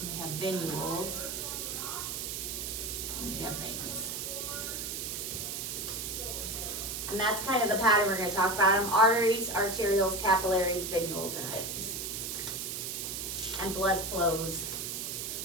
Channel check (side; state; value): right; noise; hiss, 4 dB below the sound